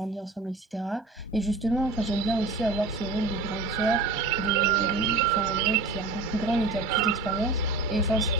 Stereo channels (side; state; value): left; quieter; 3.4 dB